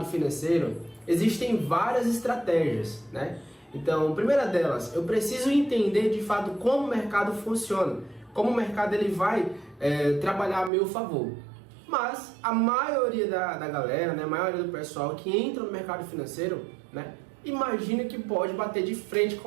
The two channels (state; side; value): drops out; left; at 10.7 s